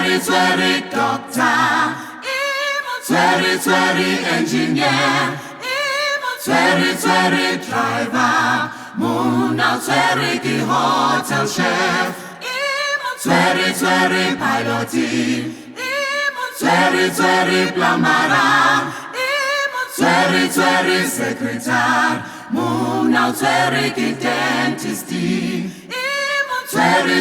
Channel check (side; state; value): both; identical; correlation 1.00